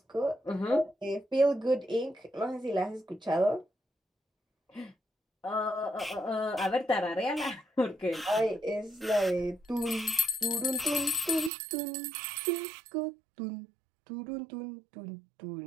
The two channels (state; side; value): drops out; left; at 11.5 s